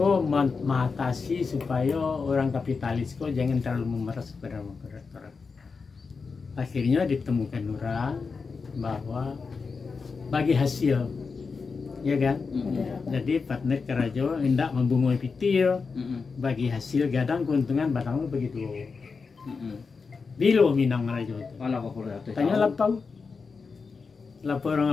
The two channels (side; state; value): right; quieter; 4.9 dB